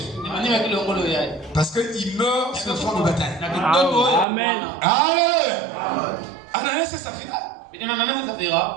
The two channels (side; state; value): left; drops out; at 4.2 s